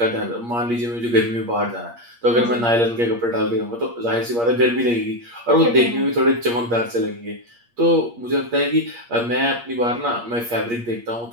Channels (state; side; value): late; left; 8.5 ms